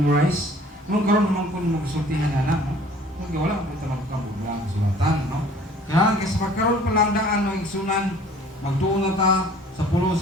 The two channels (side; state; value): both; normal; correlation 0.52